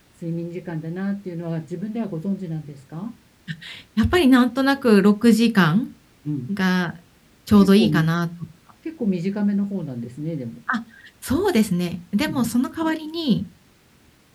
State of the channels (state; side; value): identical; both; correlation 1.00